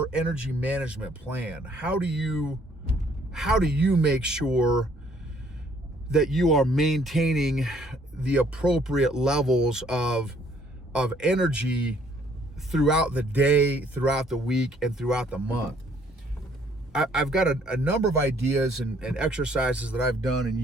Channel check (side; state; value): both; normal; correlation 0.63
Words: energy management plan? How do you make sure that you are maintaining the appropriate levels of energy throughout the day, throughout the week, and throughout the month? I've got a number of ideas and exercises that I've done and